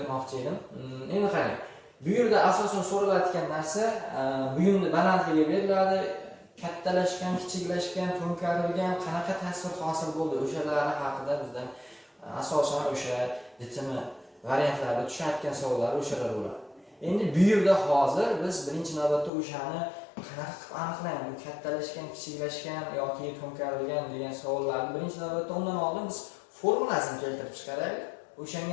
edim. Endi qarang. Bu yerda asosan so'ralayotgan narsa buyumni balandligi beriladi. Kattalashgan, kichiklashgan, to'nkarilgan qanaqa tasvir hosil bo'ldi, o'shalari haqida bizdan asosan o'sha DTM variantlarida tushayotgan savollar o'shalar bo'ladi. Endi bu yerda hozir biz birinchi navbatda o'shani qanaqa qilib aniqlaymiz, kattalashgan, kichiklashgan yoki to'nkarilgan degan savollarni birinchi navbatda undan oldin biz formulasini keltirib chiqaraylik.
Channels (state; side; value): drops out; right; at 19.3 s